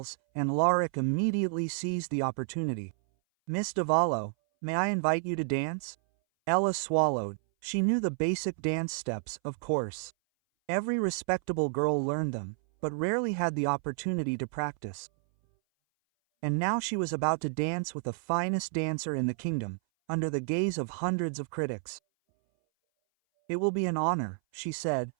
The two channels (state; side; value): silent; left; 57 dB below the other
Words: and Alaric immediately seized the opportunity. "Miss Davallo, may I invite you to dance?" Ella swallowed. She knew the basic dance steps, of course. Every respectable girl learned them, but rarely had the opportunity to practice. And now she was about to dance with the finest dancer in the kingdom, under the gaze of hundreds of critics. "It will be an honor," she said,